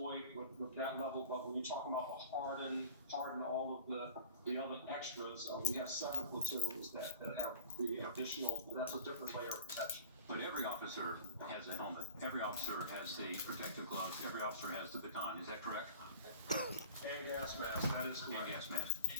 with that level. But when you're talking about the harden all of the other extras, we have 7 platoons that have the additional. That's a different layer of protection. But every officer has a helmet. Every officer has the protective gloves. Every officer has the baton. Is that correct? And gas mask. That is correct. And gas mask.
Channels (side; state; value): both; inverted; correlation -0.40